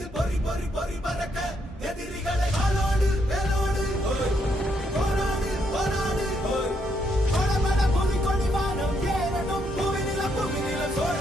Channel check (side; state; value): both; normal; correlation 0.75